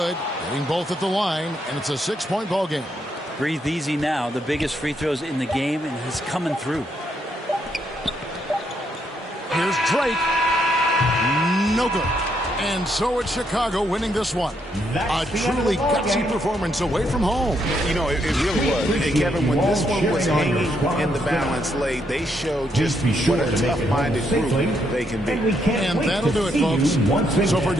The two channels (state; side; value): normal; both; correlation 0.76